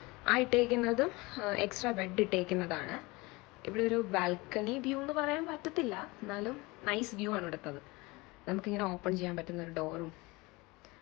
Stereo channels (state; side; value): quieter; right; 23.6 dB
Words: ആ ഇട്ടേക്കുന്നതും എക്സ്ട്രാ ബെഡ് ഇട്ടേക്കുന്നതാണ്. ഇവിടെ ഒരു ബാൽക്കണി വ്യൂ എന്ന് പറയാൻ പറ്റത്തില്ല, എന്നാലും നൈസ് വ്യൂ ആണ് ഇവിടുത്തത്. നമുക്കിങ്ങനെ ഓപ്പൺ ചെയ്യാൻ പറ്റുന്ന ഒരു ഡോറും.